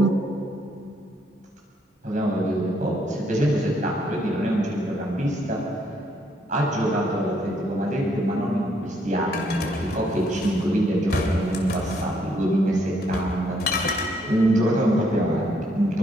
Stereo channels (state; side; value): normal; both; correlation 0.71